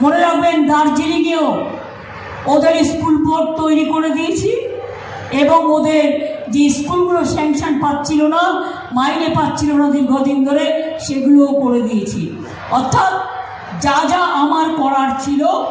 মনে রাখবেন, দার্জিলিংয়েও ওদের স্কুল বোর্ড তৈরি করে দিয়েছি, এবং ওদের যে স্কুলগুলো স্যাংশন পাচ্ছিল না, মাইনে পাচ্ছিল না দীর্ঘদিন ধরে, সেগুলোও করে দিয়েছি। অর্থাৎ যা যা আমার করার ছিল,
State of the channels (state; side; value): identical; both; correlation 1.00